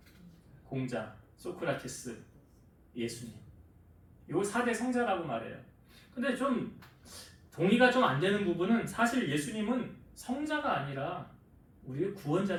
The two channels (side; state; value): both; identical; correlation 1.00